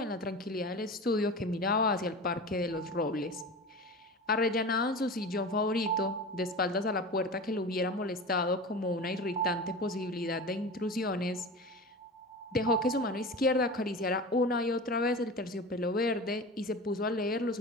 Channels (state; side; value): normal; both; correlation 0.31